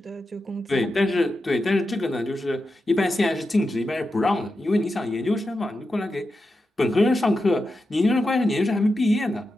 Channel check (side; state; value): both; normal; correlation 0.89